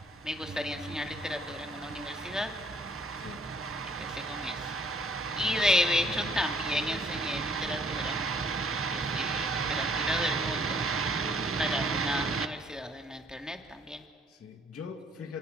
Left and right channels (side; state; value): both; normal; correlation 0.63